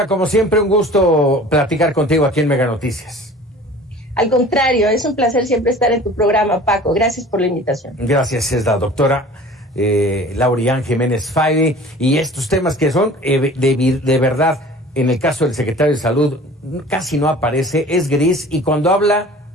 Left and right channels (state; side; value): normal; both; correlation 0.44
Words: como siempre, un gusto platicar contigo aquí en Mega Noticias. Al contrario, es un placer siempre estar en tu programa, Paco. Gracias por la invitación. Gracias, es la doctora Laurian Jiménez Faide, y estos temas que son de verdad, en el caso del secretario de Salud, casi no aparece, es gris, y cuando habla,